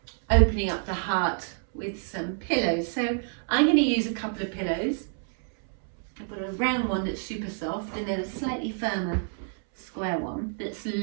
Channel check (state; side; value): silent; left; 59 dB below the other